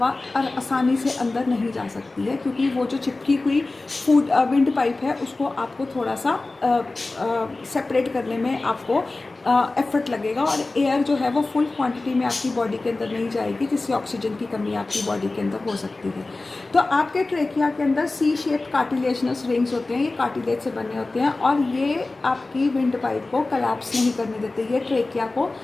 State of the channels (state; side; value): quieter; right; 3.2 dB